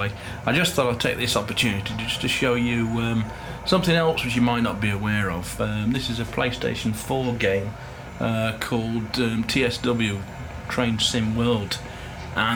I just thought I'd take this opportunity just to show you something else which you might not be aware of. This is a PlayStation 4 game called TSW, Train Sim World.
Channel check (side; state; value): both; identical; correlation 1.00